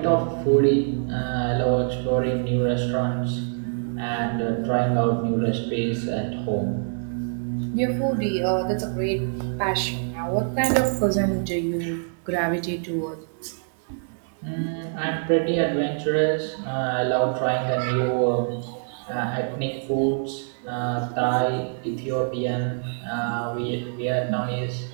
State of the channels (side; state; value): left; silent; digital silence